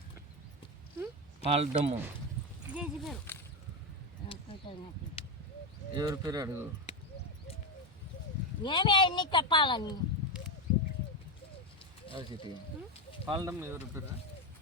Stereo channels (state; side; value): normal; both; correlation 0.11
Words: పాలడమ్మ ఎవరి పేరు అడుగు. ఏమే అన్ని చెప్పాలని చిట్టి పాలడమ్మ ఎవరి పేరు?